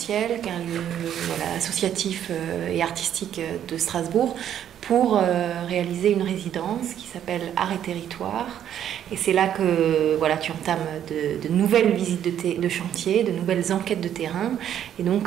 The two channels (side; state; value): left; quieter; 10.1 dB